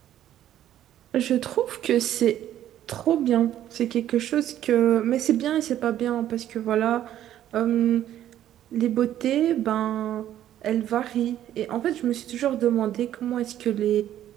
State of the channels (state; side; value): quieter; left; 11.7 dB